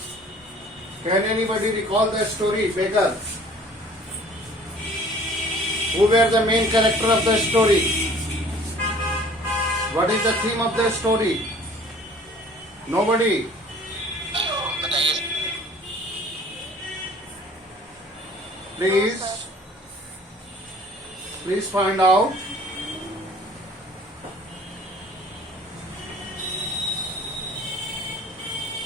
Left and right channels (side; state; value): both; normal; correlation 0.50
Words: Can anybody recall the story, Beggar? Who were the main character of the story? What is the theme of the story? Nobody. Please find out.